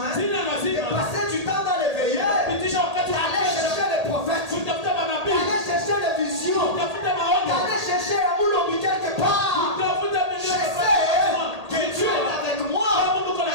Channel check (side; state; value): left; late; 1.8 ms